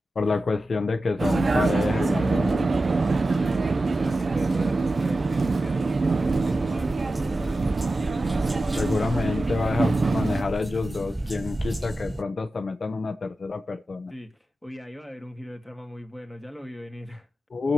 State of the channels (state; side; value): normal; both; correlation 0.92